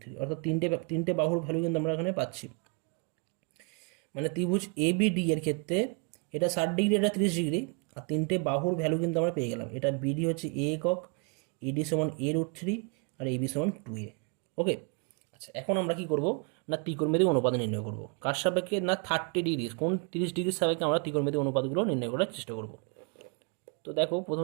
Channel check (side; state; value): left; quieter; 35.5 dB